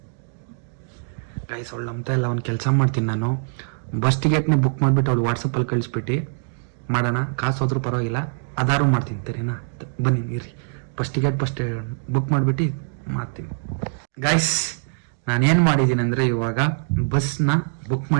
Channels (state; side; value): silent; left; digital silence